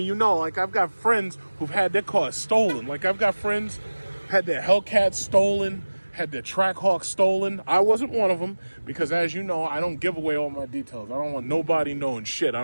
you know, like I've got friends who've had their cars stolen. Like I've got friends had their Hellcat stolen, had their Trackhawk stolen. I wasn't one of them because, as you know, I don't give away all my details. I don't want nobody knowing shit. I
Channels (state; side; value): inverted; both; correlation -1.00